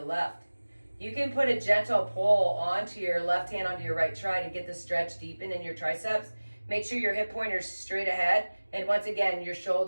left. You can put a gentle pull onto your left hand onto your right tri to get the stretch deepen in your triceps. Make sure your hip pointer's straight ahead. And once again, your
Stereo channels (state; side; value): inverted; both; correlation -1.00